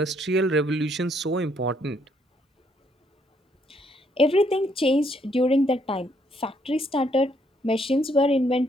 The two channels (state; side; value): normal; both; correlation 0.70